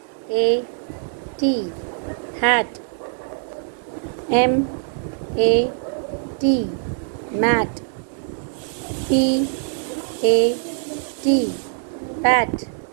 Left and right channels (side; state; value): left; silent; digital silence